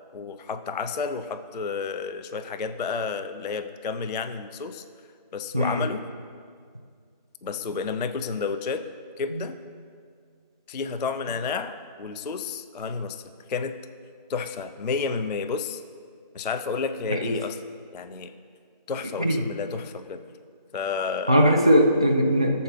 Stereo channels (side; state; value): both; inverted; correlation -0.50